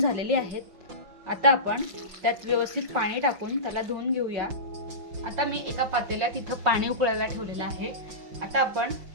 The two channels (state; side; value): late; left; 5.7 ms